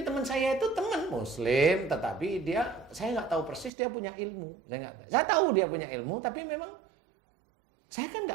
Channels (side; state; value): left; drops out; at 3.7 s